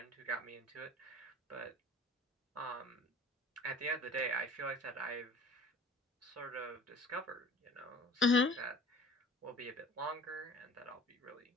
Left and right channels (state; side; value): normal; both; correlation 0.45